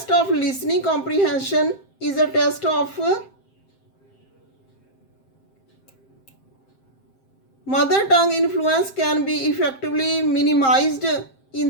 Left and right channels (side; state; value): right; late; 7.6 ms